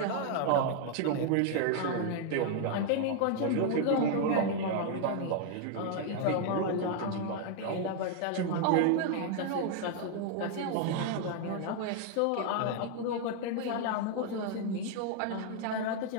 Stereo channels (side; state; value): both; different; correlation 0.00